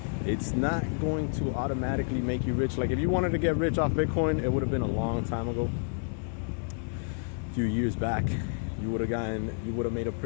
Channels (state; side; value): silent; right; 58 dB below the other